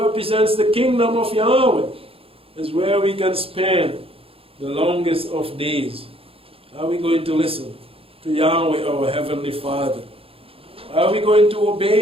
the kingdom of Yahweh is where we can spend the longest of days. Are we going to listen to Yahweh, our Heavenly Father? Are we going to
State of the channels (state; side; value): late; left; 0.27 ms